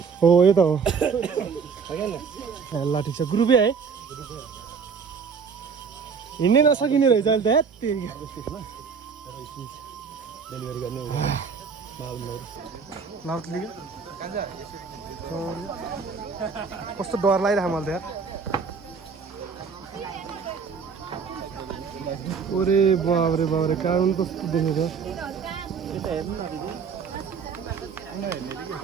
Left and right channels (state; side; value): quieter; left; 5.8 dB